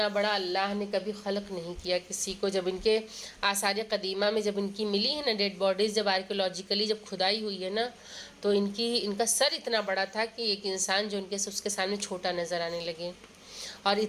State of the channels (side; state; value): both; identical; correlation 1.00